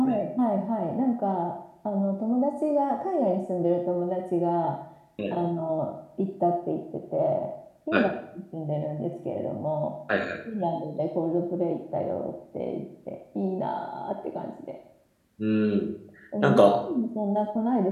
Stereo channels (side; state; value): both; identical; correlation 1.00